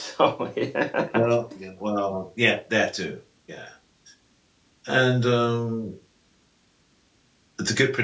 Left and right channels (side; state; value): both; identical; correlation 1.00